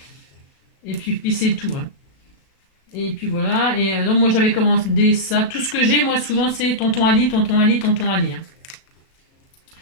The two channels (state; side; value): late; right; 37 ms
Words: et puis c'est tout. Hein. Et puis voilà, et donc moi j'avais commandé ça, tout ce que j'ai moi souvent c'est Tonton Ali. Hein.